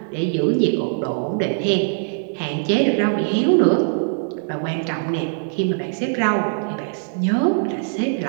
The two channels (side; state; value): left; silent; 64 dB below the other